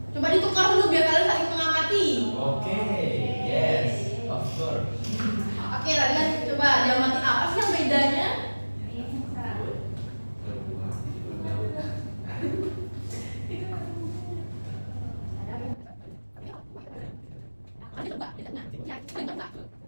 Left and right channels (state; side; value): inverted; both; correlation -1.00